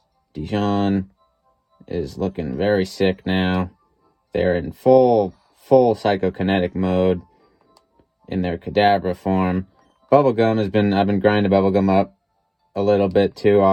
Dijon is looking very sick now. They're in full psychokinetic mode in their Kadabra form. I've been grinding Bubblegum up a little bit too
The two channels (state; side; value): identical; both; correlation 1.00